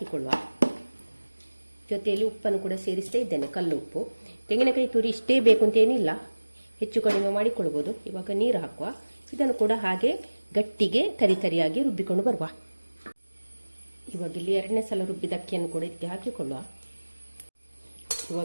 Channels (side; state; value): both; inverted; correlation -1.00